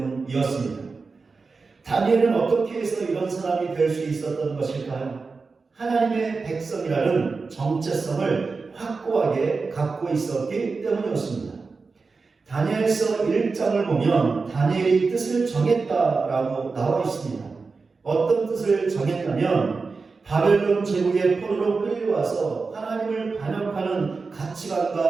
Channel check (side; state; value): left; quieter; 4.4 dB